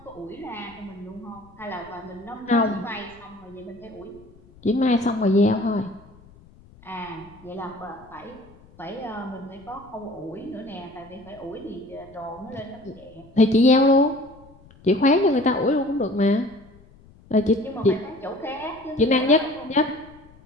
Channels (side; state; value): left; noise; rumble, 25 dB below the sound